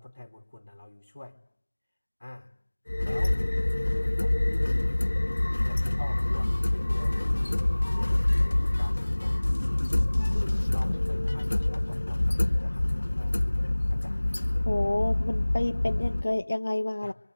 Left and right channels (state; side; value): inverted; both; correlation -1.00